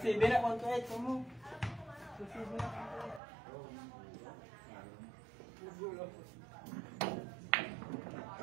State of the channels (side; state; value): left; drops out; at 3.2 s